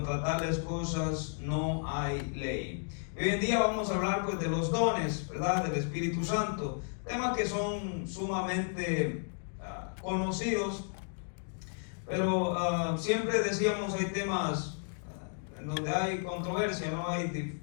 tales cosas no hay ley. Y hoy en día vamos a hablar, pues, de los dones, ¿verdad?, del Espíritu Santo, temas que son sumamente conocidos, pero siempre decíamos, hay temas en donde hay controversia, no hay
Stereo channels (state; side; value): silent; right; 56 dB below the other